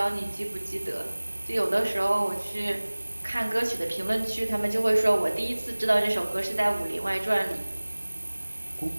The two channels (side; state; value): both; inverted; correlation -1.00